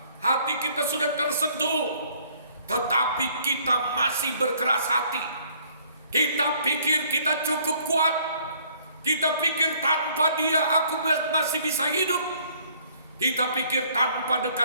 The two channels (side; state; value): both; inverted; correlation -0.61